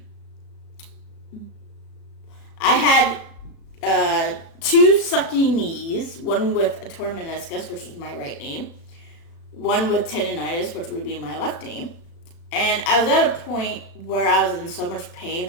had 2 sucky knees, one with a torn meniscus, which is my right knee, one with tendonitis, which would be my left knee. And I was at a point where I was in so much pain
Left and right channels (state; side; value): late; right; 36 ms